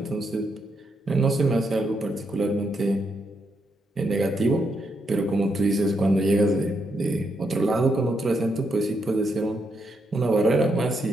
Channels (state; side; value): normal; both; correlation 0.80